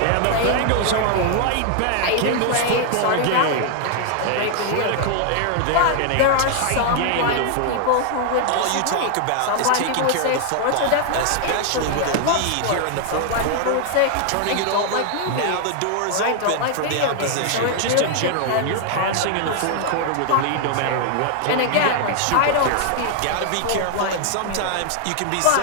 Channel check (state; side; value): different; both; correlation 0.00